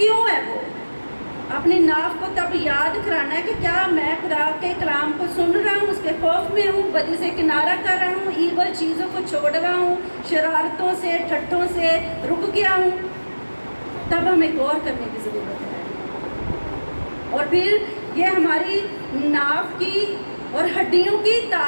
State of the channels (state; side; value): inverted; both; correlation -1.00